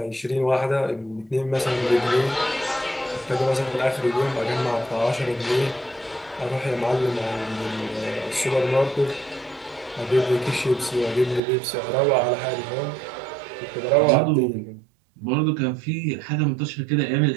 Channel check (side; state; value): left; drops out; at 11.4 s